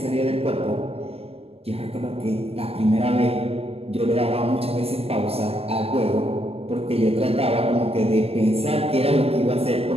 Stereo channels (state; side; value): late; left; 0.28 ms